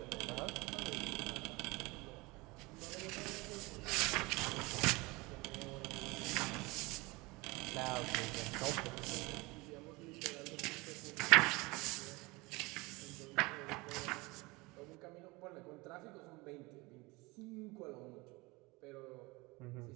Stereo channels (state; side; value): quieter; left; 23.8 dB